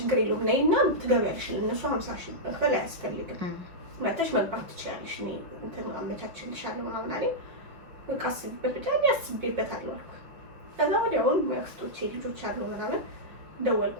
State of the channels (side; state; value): left; late; 5.7 ms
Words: የለውም ነይና ትገቢያለሽ ለነሱ 50,000 ብር መክፈል አያስፈልግም መጥተሽ መግባት ትችያለሽ እኔ እንትን አመቻችልሻለሁ ምናምን አለኝ በቃ አስቤበት ብቻ አስቤበታለሁ አልኩ ከዛ ወዲያውን መክስቶቼ ልጆች አሉ ምናምን